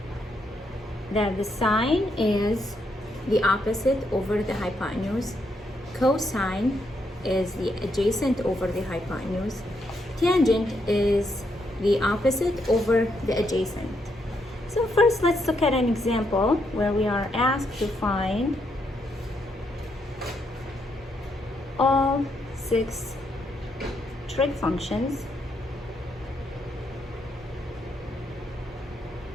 that the sine is the opposite over the hypotenuse, cosine is the adjacent over the hypotenuse, tangent is the opposite over the adjacent. So first, let's look at an example where we are asked to find all 6 trig functions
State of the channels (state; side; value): normal; both; correlation 0.78